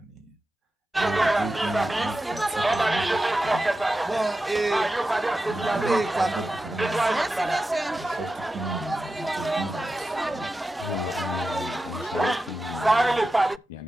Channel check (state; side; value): normal; both; correlation 0.92